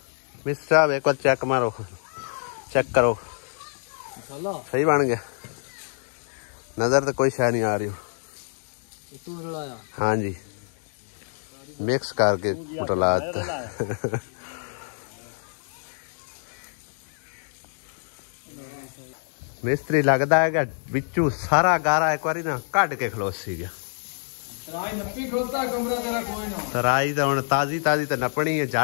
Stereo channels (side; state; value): right; silent; digital silence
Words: मिस्टर साहब एक बार चेक मारो चेक करो सही बन गया नजर तो कोई शाय नहीं आ रही हाँ जी मिक्स करके उठला मिस्त्री लगता है कि बिचू सारा गारा एक बार ना कट के खलोसी गया तराई तो हम ताजी ताजी तो नपनी है